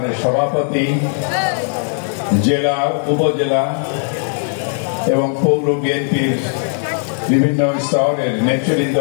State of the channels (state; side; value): silent; right; 59 dB below the other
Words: সভাপতি, জেলা, উপজেলা এবং পৌর বিএনপির বিভিন্ন স্তরের নেতৃবৃন্দ